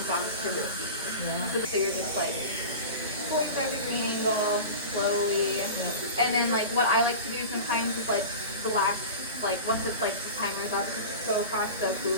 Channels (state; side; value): inverted; both; correlation -0.31